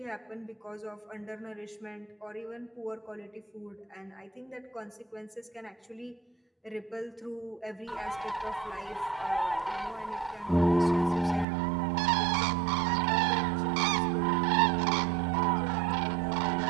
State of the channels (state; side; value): drops out; left; at 11.5 s